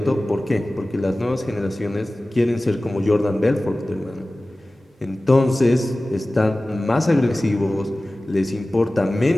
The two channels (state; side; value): normal; both; correlation 0.97